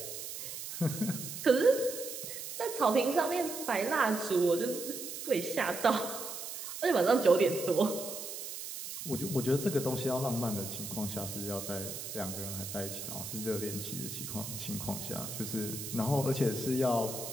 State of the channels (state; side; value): noise; right; hiss, 8 dB below the sound